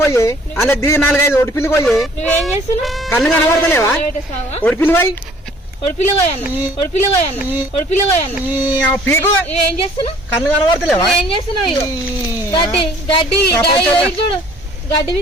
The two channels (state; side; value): normal; both; correlation 0.55